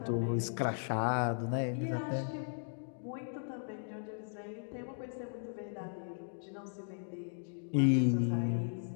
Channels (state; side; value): silent; right; digital silence